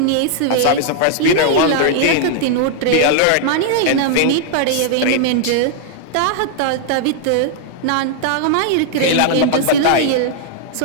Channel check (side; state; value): both; different; correlation -0.01